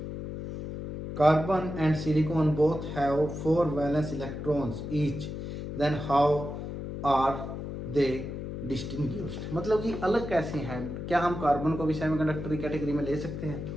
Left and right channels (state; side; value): noise; left; hum, 7 dB below the sound